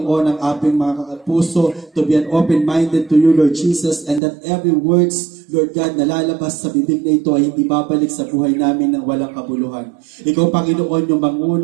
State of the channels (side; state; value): left; drops out; at 4.2 s